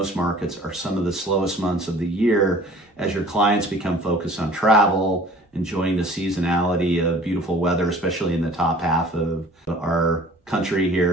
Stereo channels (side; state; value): both; normal; correlation 0.49